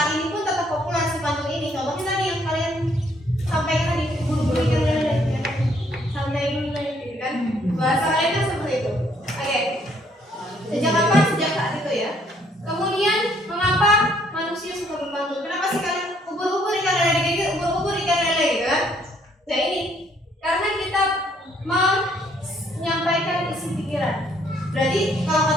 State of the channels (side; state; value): both; normal; correlation 0.66